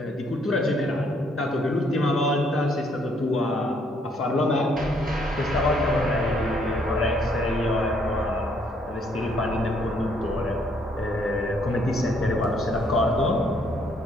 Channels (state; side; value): normal; both; correlation 0.68